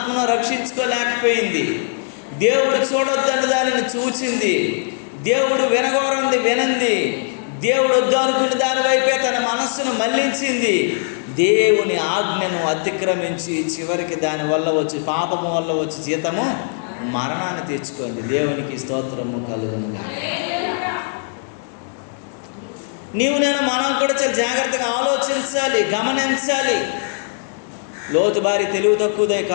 రక్షించుకోలేకపోయింది. దేవుడు చూడొద్దని దానిని చూచింది, దేవుడు వినగోరంది వినంది, దేవుడు వద్దు అనుకున్న దాని వైపే తన మనస్సును మళ్లించింది. దేవుని ఆజ్ఞను అతిక్రమించి చివరికి దానివల్ల వచ్చి పాపము వల్ల వచ్చి జీతము మరణాన్ని తెచ్చుకుంది. దేవునికి స్తోత్రము కలుగును గాక. మనం కూడా చాలా జాగ్రత్తగా ఆలోచించాలి, గమనించాలి. లోతు భార్య తెలివి తక్కువదే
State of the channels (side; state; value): right; silent; digital silence